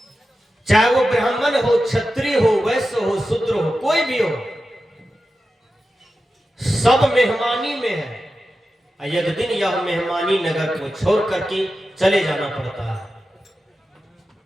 चाहे वो ब्राह्मण हो, क्षत्रिय हो, वैश्य हो, शूद्र हो, कोई भी हो, सब मेहमानी में है। एक दिन यह मेहमानी नगर को छोड़ करके चले जाना पड़ता है।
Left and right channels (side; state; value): both; normal; correlation 0.92